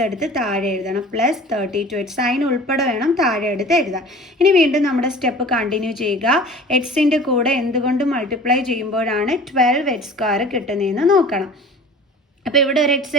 എടുത്ത് താഴെ എഴുതണം. പ്ലസ് 32 എക്സ് സൈൻ ഉൾപ്പെടെ വേണം താഴെ എടുത്ത് എഴുതാൻ. ഇനി വീണ്ടും നമ്മുടെ സ്റ്റെപ്പ് കണ്ടിന്യൂ ചെയ്യുക. എക്സിൻ്റെ കൂടെ എന്തുകൊണ്ട് മൾട്ടിപ്ലൈ ചെയ്യുമ്പോഴാണ് 12 എക്സ് സ്ക്വയർ കിട്ടുന്നതെന്ന് നോക്കണം. അപ്പോൾ ഇവിടെ ഒരു എക്സ്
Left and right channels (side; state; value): both; normal; correlation 0.42